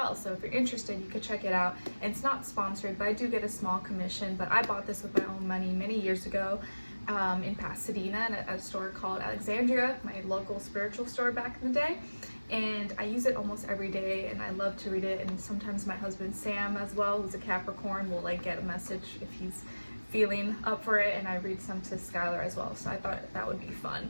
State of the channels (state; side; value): inverted; both; correlation -1.00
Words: so if you're interested you can check it out. And it's not sponsored, but I do get a small commission. But I bought this with my own money many years ago in Pasadena at a store called Alexandria, my local spiritual store back in the day, and I use it almost every day and I love to read it. And sometimes my husband Sam as well, who's a Capricorn, will like get a message if he's feeling up for it, and I read some to Skylar as well, so I thought that would be